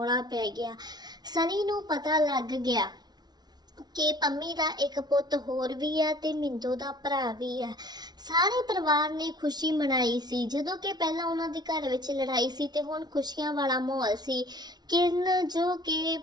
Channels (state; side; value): late; left; 0.19 ms